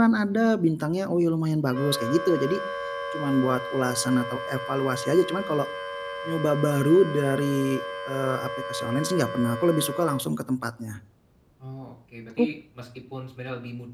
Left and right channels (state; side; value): identical; both; correlation 1.00